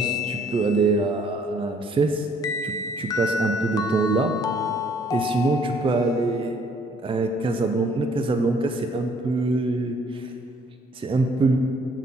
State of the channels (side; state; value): both; normal; correlation 0.62